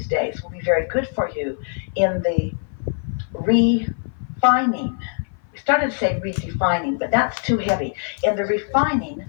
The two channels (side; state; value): right; silent; 55 dB below the other